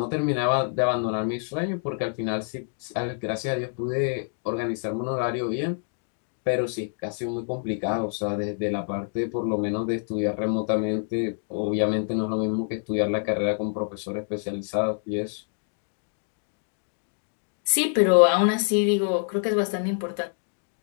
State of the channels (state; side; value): silent; right; digital silence